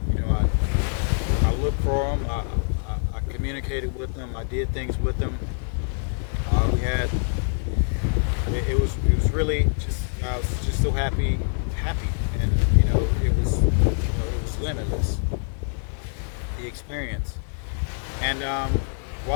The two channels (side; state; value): right; silent; 62 dB below the other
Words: I looked for them. I communicated with them. I did things with them. It was really just, I was just so happy, and it was limitless, the experience. And